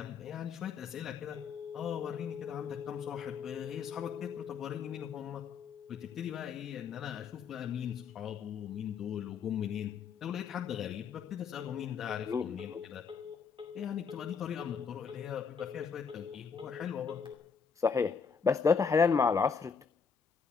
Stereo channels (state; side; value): quieter; right; 6.0 dB